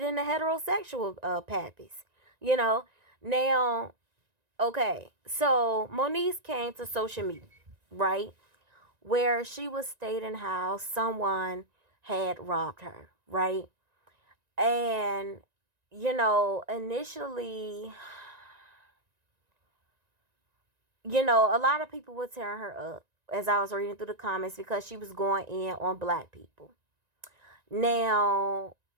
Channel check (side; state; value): left; late; 1.9 ms